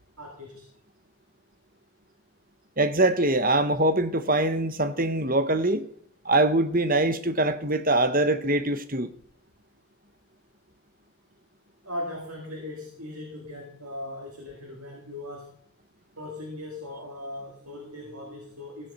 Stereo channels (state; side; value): normal; both; correlation -0.02